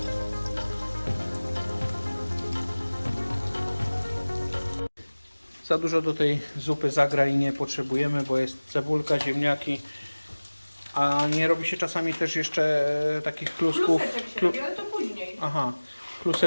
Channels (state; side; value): inverted; both; correlation -1.00